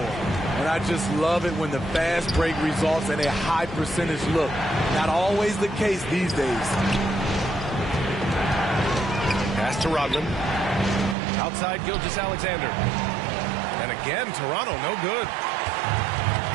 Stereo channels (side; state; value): left; drops out; at 11.2 s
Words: And I just love it when the fast break results in a high percentage look. Not always the case these days. Pass to Rodman. Outside Gilgeous-Alexander. And again, Toronto, no good.